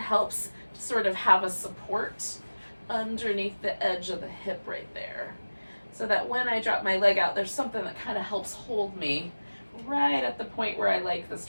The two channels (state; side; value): inverted; both; correlation -1.00